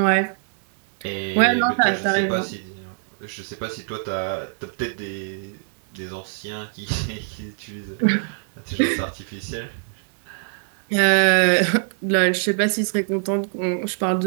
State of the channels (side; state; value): left; silent; digital silence